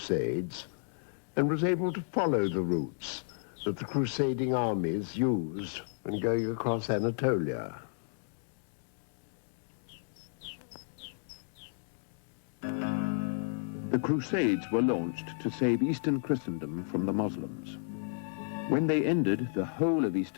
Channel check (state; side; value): silent; right; digital silence